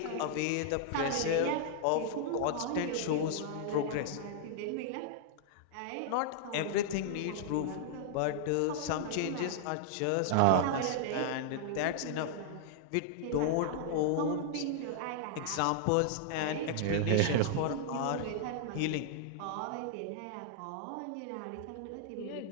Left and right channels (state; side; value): different; both; correlation -0.01